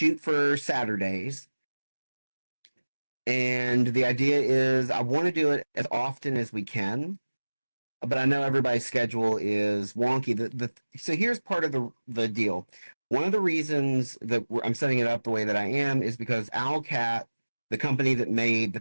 for Saturdays. And the idea is I want to do it as often as we can. But I know everybody's schedule is wonky. So here's part of the deal. One of the reasons that I'm setting it up the way that I am is because Owlcat, the company that made the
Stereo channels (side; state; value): both; inverted; correlation -1.00